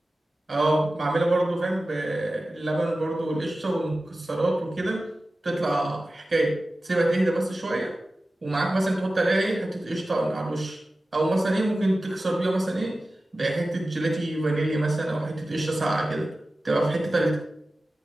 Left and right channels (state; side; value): normal; both; correlation 0.95